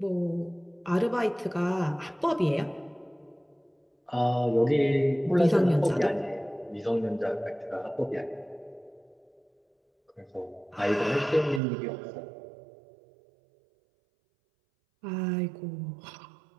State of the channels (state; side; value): drops out; left; at 11.6 s